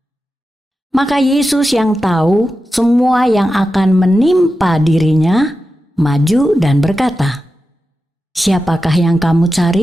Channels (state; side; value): normal; both; correlation 0.91